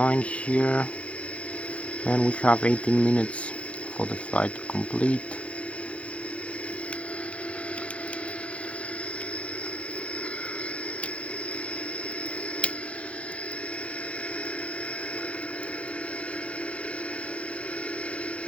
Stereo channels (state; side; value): late; right; 0.062 ms